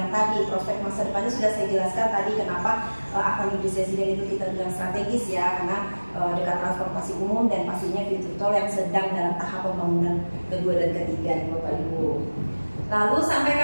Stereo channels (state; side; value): inverted; both; correlation -1.00